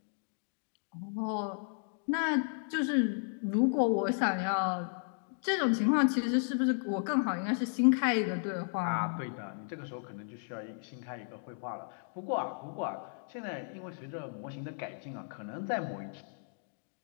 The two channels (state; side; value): silent; right; digital silence